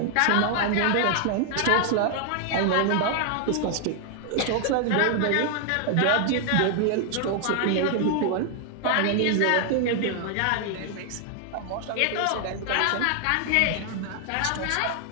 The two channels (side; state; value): both; different; correlation 0.00